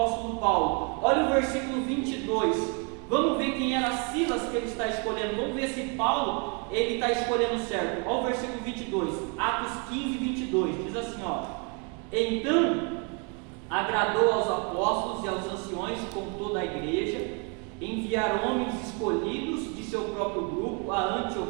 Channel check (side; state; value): left; quieter; 34.0 dB